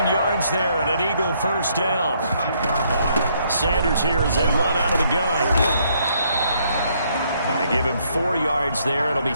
yards there and an Eagle first down. Sanders here as they run out of the gun. They give him 4 yards there. It'll be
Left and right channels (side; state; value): both; inverted; correlation -0.70